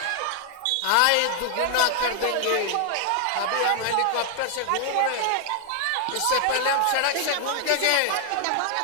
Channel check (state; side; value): different; both; correlation 0.00